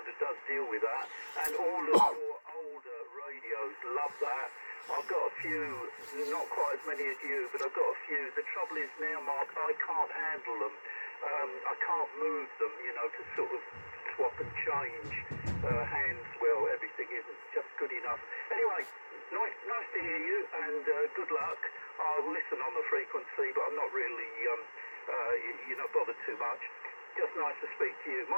does deal with that, and all of your older radios love that. I've got a few, not quite as many as you, but I've got a few. The trouble is now, Mark, I can't handle them. I can't move them, you know, to sort of swap and change hands. Well, everything isn't just good enough. Anyway, nice to hear you, and good luck. I'll listen on the frequency, but I'm not really, you know, bothered too much. Just nice to speak to you.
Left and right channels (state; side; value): inverted; both; correlation -1.00